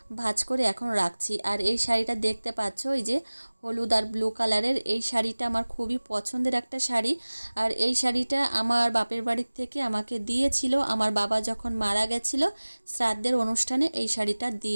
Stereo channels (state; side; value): inverted; both; correlation -1.00